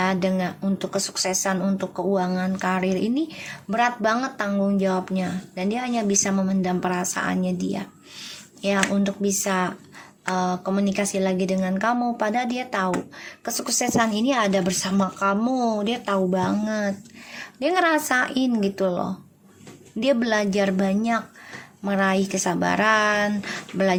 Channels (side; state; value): both; identical; correlation 1.00